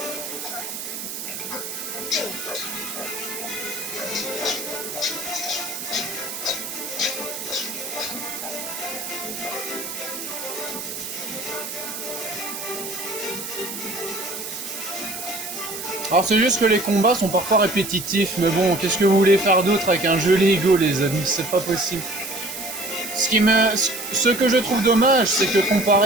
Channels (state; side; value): noise; right; hiss, 7 dB below the sound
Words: Alors c'est juste que les combats sont parfois répétitifs, mais bon, qu'est-ce que vous voulez faire d'autre avec un jeu Lego, les amis? C'est pas possible. Ce que je trouve dommage, c'est que